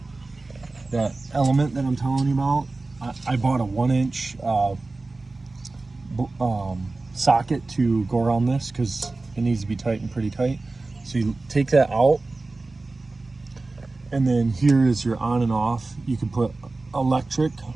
element that I'm telling you about. I bought a 1-inch socket to go around this because it needs to be tightened pretty tight. So you take that out, and then here is your on and off. You can put electric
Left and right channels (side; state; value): left; quieter; 3.4 dB